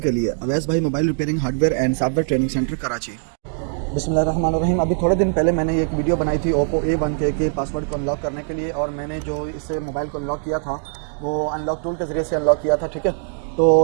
के लिए अवैस भाई mobile repairing hardware and software training centre Karachi. बिस्मिल्लाहिर्रहमानिर्रहीम। अभी थोड़े दिन पहले मैंने एक वीडियो बनाई थी ओप्पो A1 के पासवर्ड को अनलॉक करने के लिए, और मैंने जो इस मोबाइल को अनलॉक किया था वो अनलॉक टूल के ज़रिए से अनलॉक किया था। ठीक है,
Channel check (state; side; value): silent; left; digital silence